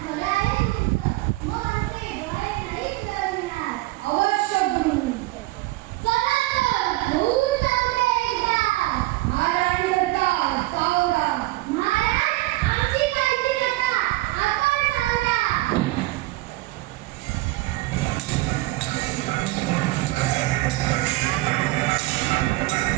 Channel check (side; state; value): left; quieter; 19.5 dB